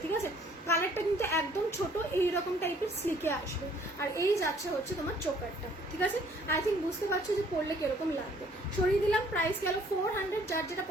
ঠিক আছে। কালারটা কিন্তু একদম ছোট, এইরকম টাইপের স্লিকে আসবে, আর এই যাচ্ছে হচ্ছে তোমার চোকারটা, ঠিক আছে। আই থিঙ্ক বুঝতে পারছো যে পরলে কিরকম লাগবে। সরিয়ে দিলাম, প্রাইস গেল 400। যার যেটা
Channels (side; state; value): both; normal; correlation 0.60